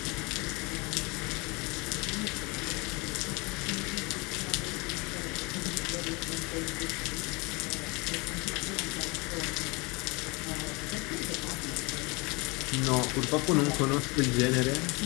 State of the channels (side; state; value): right; quieter; 27.3 dB